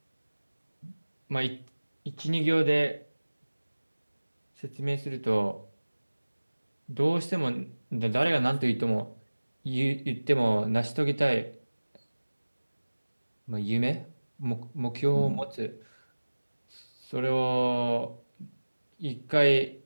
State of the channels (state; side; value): inverted; both; correlation -1.00